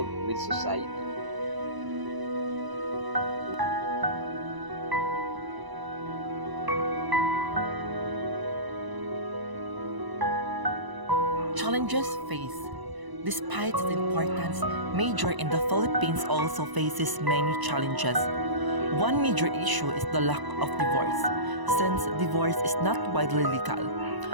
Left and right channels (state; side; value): late; left; 1.0 ms